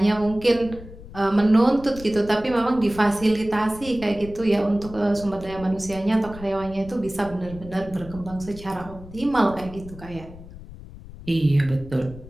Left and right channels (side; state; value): left; noise; rumble, 16 dB below the sound